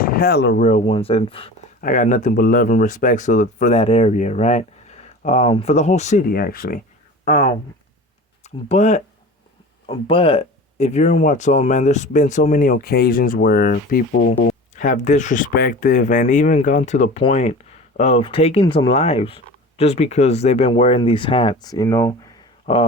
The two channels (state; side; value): normal; both; correlation 0.36